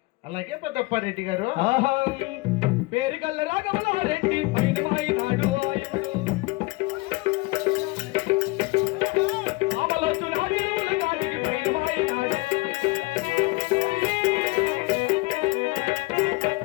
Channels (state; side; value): quieter; right; 22.9 dB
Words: అలాగే పెద్దప్పారెడ్డి గారు. ఆహా పేరుగల్ల రాఘవలారెడ్డి పైన మాయినాడు ఆయనడు. రామలక్ష్మణ చెరువుల దాటికి పైన మాయినాడు.